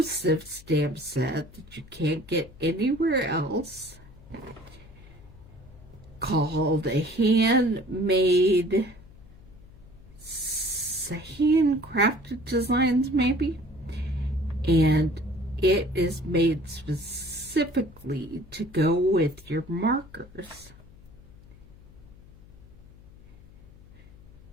stamp set that you can't get anywhere else, called a handmade, handcrafted designs maybe, and it is made specifically to go with your markers.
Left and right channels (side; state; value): left; noise; hum, 22 dB below the sound